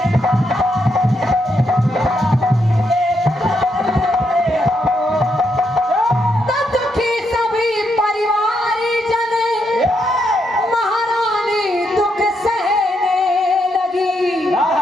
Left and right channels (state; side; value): normal; both; correlation 0.79